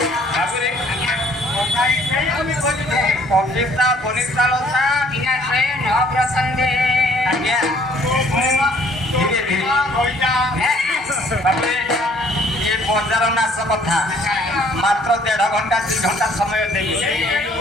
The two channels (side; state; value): both; normal; correlation 0.60